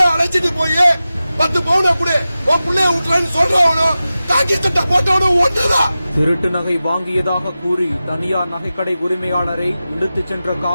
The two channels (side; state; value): both; inverted; correlation -0.94